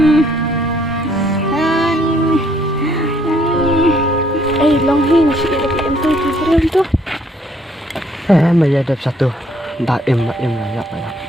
Long hin sikit lagi tu bro tu. Maya ada satu. Daim lah ya.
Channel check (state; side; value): normal; both; correlation 0.66